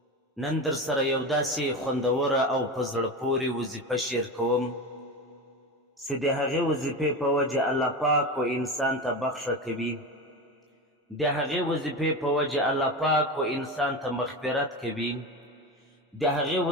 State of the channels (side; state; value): both; normal; correlation 0.23